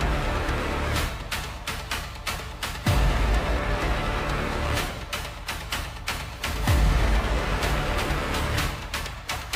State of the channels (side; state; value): both; identical; correlation 1.00